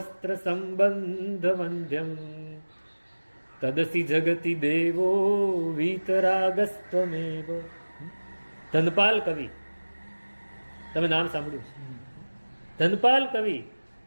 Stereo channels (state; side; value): inverted; both; correlation -1.00